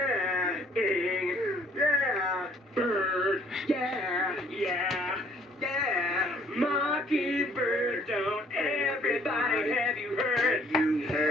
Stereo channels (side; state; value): both; normal; correlation 0.60